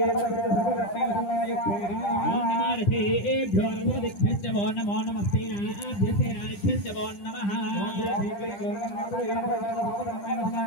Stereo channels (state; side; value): late; right; 10 ms